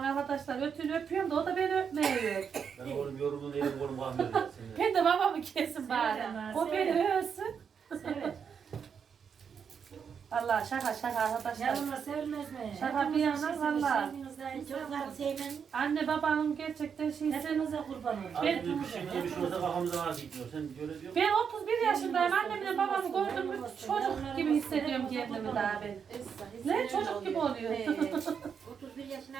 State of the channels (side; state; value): left; quieter; 6.9 dB